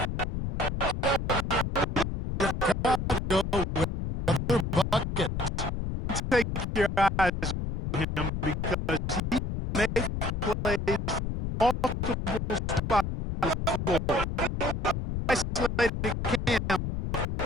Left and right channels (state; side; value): noise; left; rumble, 3 dB below the sound